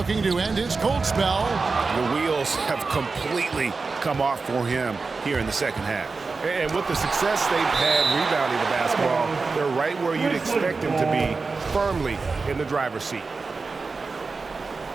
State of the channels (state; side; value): quieter; left; 4.2 dB